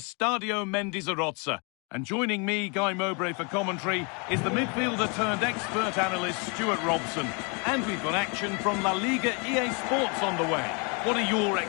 Mendizorroza. And joining me, Guy Mowbray, for commentary is the midfielder-turned-expert analyst Stuart Robson. And we've got action from La Liga EA Sports on the way. What are your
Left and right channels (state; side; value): quieter; right; 33.6 dB